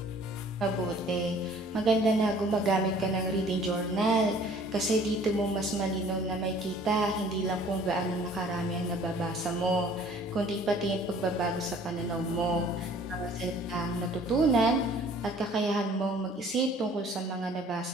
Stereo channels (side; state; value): both; normal; correlation 0.53